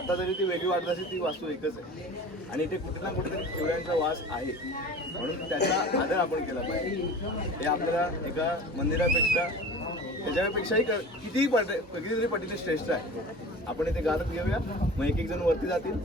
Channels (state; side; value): normal; both; correlation 0.38